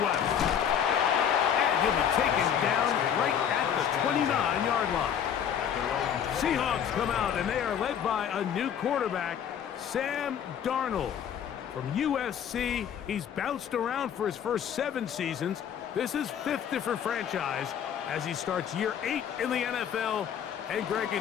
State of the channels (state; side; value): quieter; right; 8.6 dB